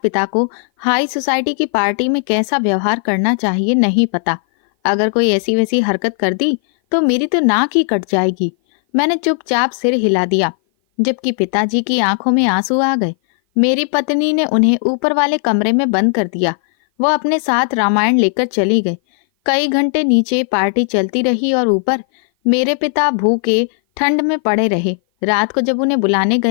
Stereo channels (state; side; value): silent; right; 57 dB below the other